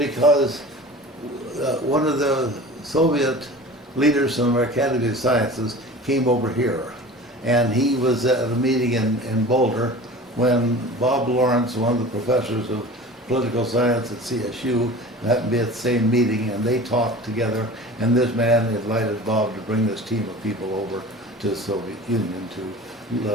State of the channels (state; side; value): normal; both; correlation 0.38